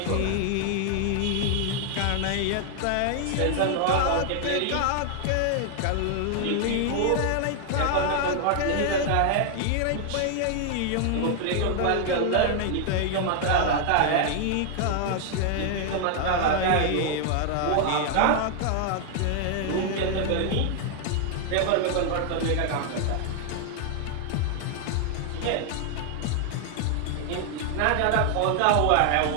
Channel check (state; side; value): different; both; correlation 0.00